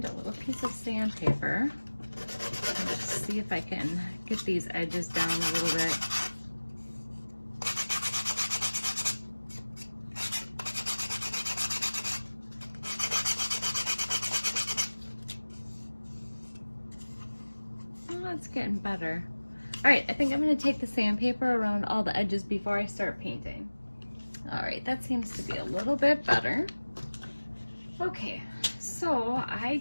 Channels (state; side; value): inverted; both; correlation -1.00